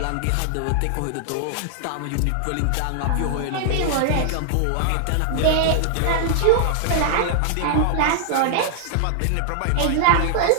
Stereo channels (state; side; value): different; both; correlation 0.00